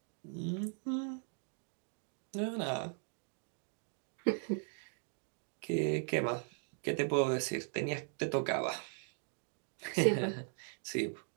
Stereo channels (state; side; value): silent; left; 52 dB below the other